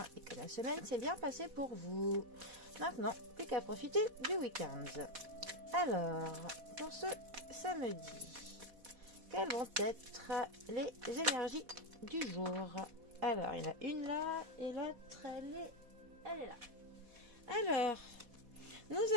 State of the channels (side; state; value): left; late; 4.1 ms